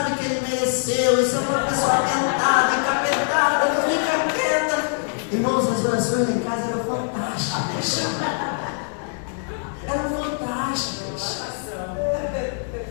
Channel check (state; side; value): silent; right; 63 dB below the other